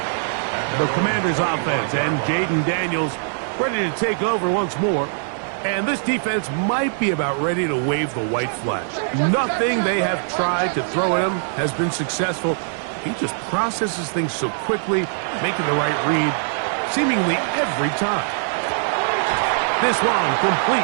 The Commanders' offense and Jaden Daniels ready to take over once more. And this defense might be about ready to wave the white flag. Nothing they have tried to throw at him has been successful. He just processes things so quickly, making the right read seemingly every time. This one complete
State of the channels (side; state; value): left; silent; 57 dB below the other